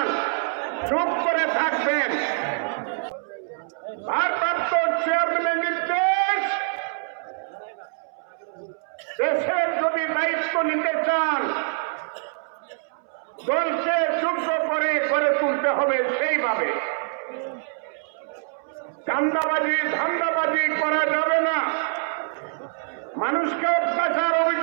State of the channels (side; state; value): left; silent; 62 dB below the other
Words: চুপ করে থাকবেন। ভারপ্রাপ্ত চেয়ারম্যানের নির্দেশ, দেশের যদি দায়িত্ব নিতে চান, দলকে যোগ্য করে গড়ে তুলতে হবে সেইভাবে। চাঁদাবাজি ধান্দাবাজি করা যাবে না, মানুষকে অত্যাচার